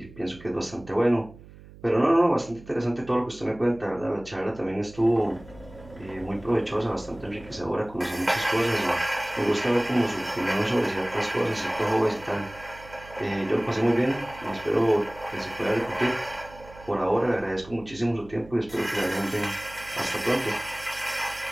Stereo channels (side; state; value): right; noise; hum, 20 dB below the sound